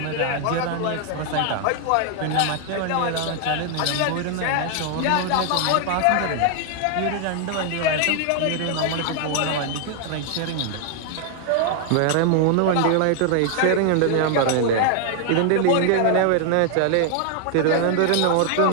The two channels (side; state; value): both; different; correlation 0.00